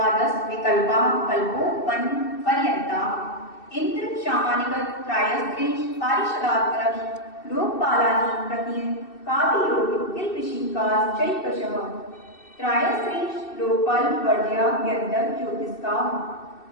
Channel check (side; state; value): right; late; 2.7 ms